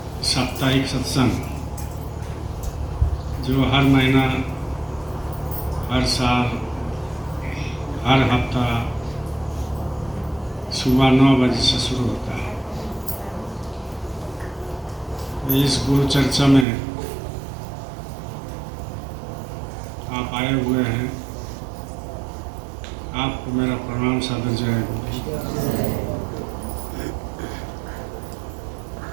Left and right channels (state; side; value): drops out; left; at 16.7 s